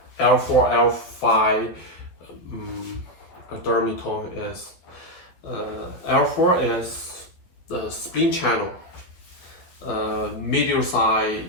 L4, L5 dermatome is L4 is the spleen channel, medial side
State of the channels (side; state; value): right; late; 12 ms